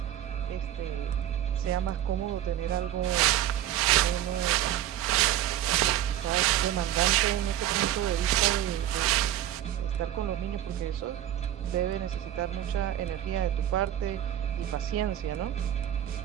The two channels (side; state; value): left; quieter; 11.9 dB